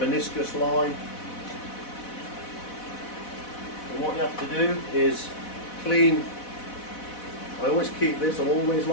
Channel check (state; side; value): late; right; 4.1 ms